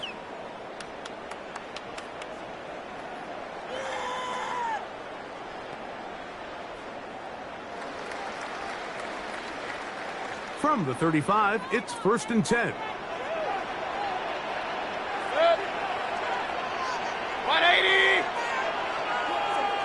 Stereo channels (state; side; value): identical; both; correlation 1.00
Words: From the 35, it's 1st and 10. 180!